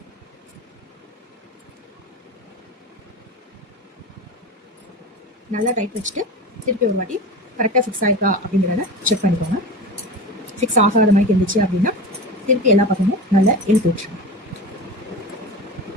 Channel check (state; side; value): normal; both; correlation 0.29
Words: நல்லா டைட் வச்சுட்டு திருப்பி ஒரு வாட்டி கரெக்டாக ஃபிக்ஸ் ஆயிருக்கா அப்படிங்கிறத செக் பண்ணிக்கோங்க. ஃபிக்ஸ் ஆகாத மாதிரி இருந்துச்சு அப்படின்னா திருப்பி எல்லா பக்கமும் நல்லா இழுத்து வச்சுருங்க.